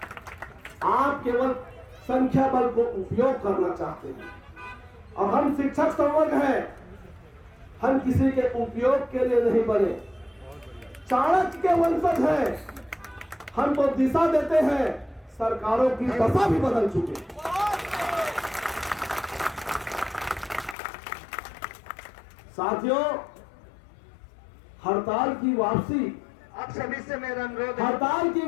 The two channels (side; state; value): right; drops out; at 20.8 s